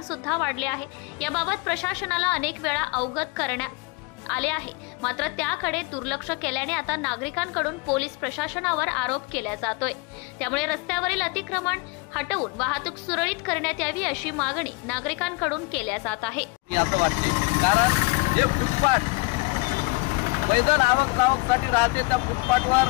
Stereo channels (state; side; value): quieter; right; 26.8 dB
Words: सुद्धा वाढले आहे. याबाबत प्रशासनाला अनेक वेळा अवगत करण्यात आले आहे, मात्र त्याकडे दुर्लक्ष केल्याने आता नागरिकांकडून पोलीस प्रशासनावर आरोप केला जातोय. त्यामुळे रस्त्यावरील अतिक्रमण हटवून वाहतूक सुरळीत करण्यात यावी अशी मागणी नागरिकांकडून केल्या जात आहे. असं वाटते कारण हे फुटपाथ मैदान आवक-जावकसाठी राहते, त्या